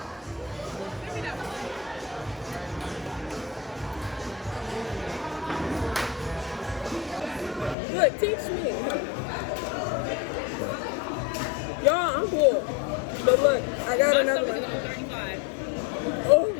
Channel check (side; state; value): right; drops out; at 7.8 s